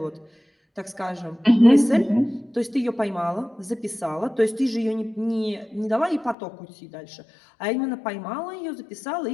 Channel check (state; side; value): drops out; right; at 6.4 s